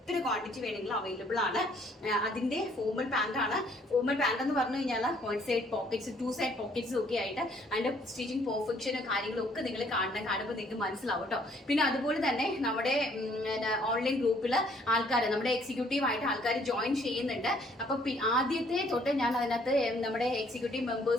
ക്വാണ്ടിറ്റി വേണമെങ്കിലും അവൈലബിൾ ആണ്. അതിന്റെ ഫോർമൽ പാന്റ് ആണ്. ഫോർമൽ പാന്റ് എന്ന് പറഞ്ഞു കഴിഞ്ഞാൽ 1 സൈഡ് പോക്കറ്റ്സ് 2 സൈഡ് പോക്കറ്റ്സ് ഒക്കെ ആയിട്ട് അതിന്റെ സ്റ്റിച്ചിങ് പെർഫെക്ഷനും കാര്യങ്ങളും ഒക്കെ നിങ്ങൾ കാണുമ്പോൾ നിങ്ങൾക്ക് മനസ്സിലാവും കേട്ടോ. പിന്നെ അതുപോലെ തന്നെ നമ്മുടെ ഓൺലൈൻ ഗ്രൂപ്പിൽ ആൾക്കാർ, നമ്മുടെ എക്സിക്യൂട്ടീവ് ആയിട്ട് ആൾക്കാർ ജോയിൻ ചെയ്യുന്നുണ്ട്. അപ്പൊ ആദ്യത്തെ തൊട്ട് ഞാൻ അതിനകത്ത് നമ്മുടെ എക്സിക്യൂട്ടീവ്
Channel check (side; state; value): both; normal; correlation 0.63